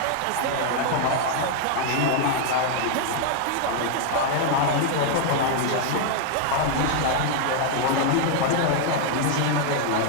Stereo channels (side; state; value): both; different; correlation 0.00